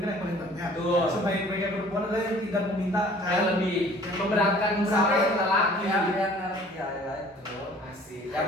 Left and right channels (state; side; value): normal; both; correlation 0.52